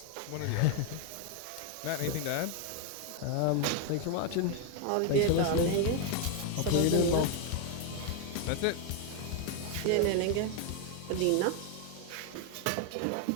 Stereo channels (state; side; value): different; both; correlation 0.01